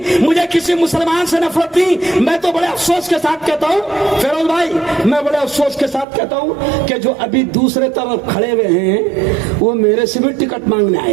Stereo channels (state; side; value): drops out; left; at 6.1 s